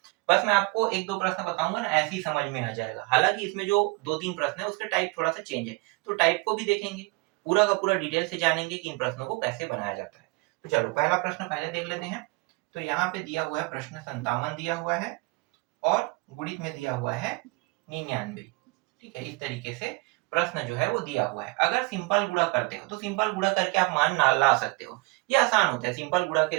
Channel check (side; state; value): left; quieter; 26.8 dB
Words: बस मैं आपको एक दो प्रश्न बताऊंगा ना, ऐसे ही समझ में आ जाएगा। हालांकि इसमें जो दो तीन प्रश्न है उसके टाइप थोड़ा सा चेंज है, तो टाइप को भी देखेंगे, पूरा का पूरा डिटेल से जानेंगे कि इन प्रश्नों को कैसे बनाया जाता है। तो चलो पहला प्रश्न पहले देख लेते हैं। तो यहाँ पे दिया हुआ है प्रश्न 57 दिया हुआ है और गुणित में दिया हुआ है 99। ठीक है, इस तरीके से प्रश्न जो है वो दिया हुआ है। अगर सिंपल गुणा करते हो तो सिंपल गुणा करके आप मान ना ला सकते हो, ये आसान होता है। सिंपल गुणा